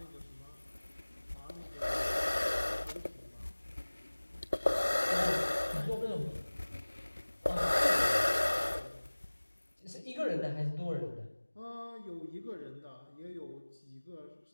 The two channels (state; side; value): inverted; both; correlation -1.00